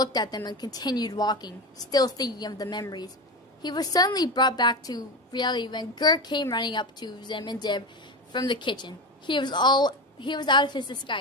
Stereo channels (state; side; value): normal; both; correlation 0.22